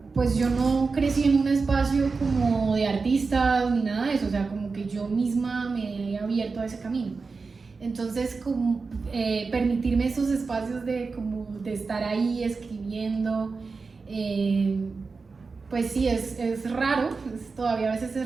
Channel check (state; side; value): quieter; left; 4.4 dB